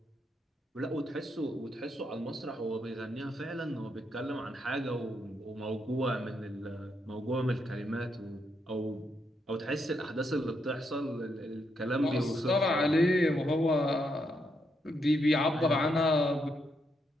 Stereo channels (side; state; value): both; normal; correlation 0.79